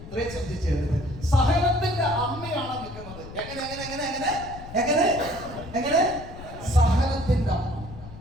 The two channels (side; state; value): left; noise; rumble, 14 dB below the sound